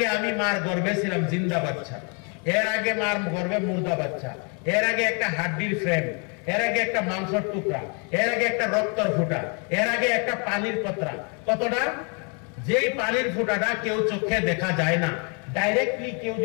আমি মার গর্ভে ছিলাম জিন্দা বাচ্চা। এর আগে মার গর্ভে মুর্দা বাচ্চা। এর আগে একটা হাড্ডির ফ্রেম। এর আগে একটা মাংসের টুকরা। এর আগে একটা রক্তর ফুটা। এর আগে একটা পানির কতরা। কতটা? যেই পানির ফুটাটা কেউ চোখে দেখা যায় না, ডাইরেক্টলি কেউ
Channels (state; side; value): quieter; right; 37.0 dB